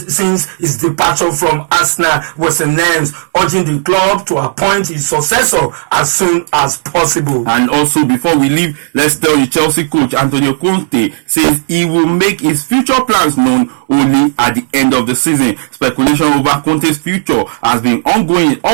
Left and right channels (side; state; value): left; silent; digital silence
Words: since his departure from Arsenal, with names urging the club to appoint his successor as soon as possible. And also, before we leave, let's tell you, Chelsea coach Antonio Conte says he will make his future plans known only at the end of the season. Speculation over Conte's future has been ongoing